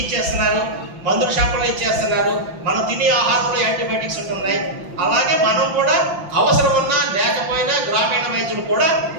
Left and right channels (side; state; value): left; late; 5.9 ms